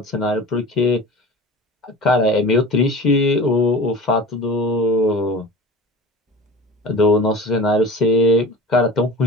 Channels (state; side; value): normal; both; correlation 0.37